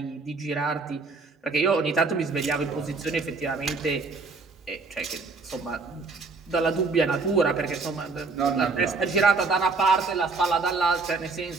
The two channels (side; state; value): left; quieter; 4.1 dB